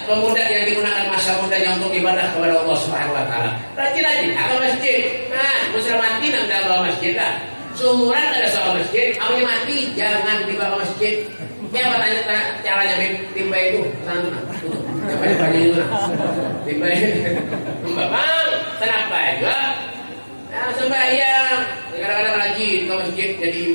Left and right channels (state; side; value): inverted; both; correlation -1.00